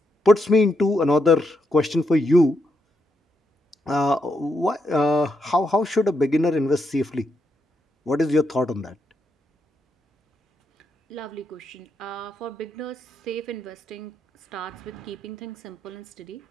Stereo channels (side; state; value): both; normal; correlation 0.81